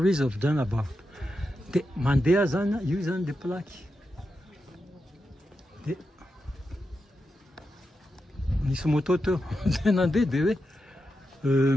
of Jean Laborde. De mandeha zany io zany le plaque. De nisy moto teo de nandeha de hoe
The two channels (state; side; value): normal; both; correlation 0.88